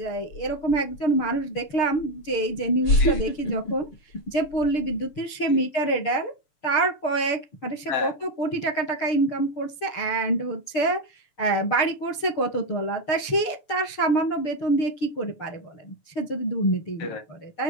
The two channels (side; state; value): right; late; 6.9 ms